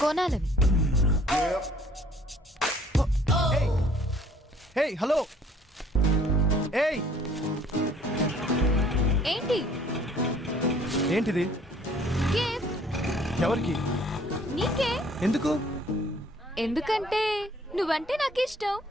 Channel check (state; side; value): normal; both; correlation 0.58